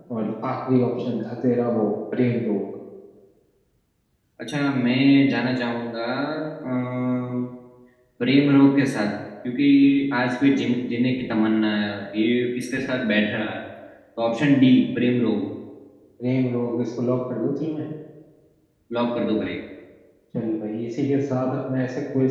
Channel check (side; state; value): both; identical; correlation 1.00